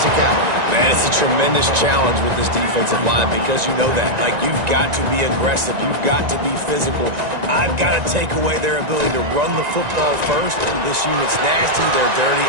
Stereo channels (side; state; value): left; late; 1.9 ms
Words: Man, it's a tremendous challenge with this defensive line because you know that. Like, you've got to be aggressive. You've got to be physical. I've got to take away their ability to run the football first. This unit's nasty. They're dirty.